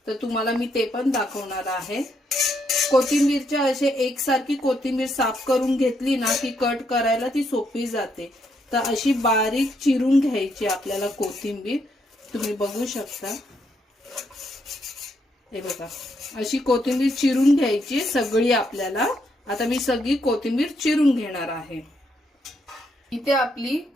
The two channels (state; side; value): normal; both; correlation 0.76